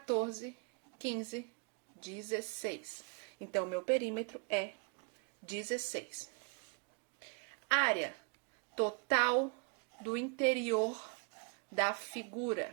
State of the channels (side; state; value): left; quieter; 35.0 dB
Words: 15, 16. Então, meu perímetro é 16. Área total do interior da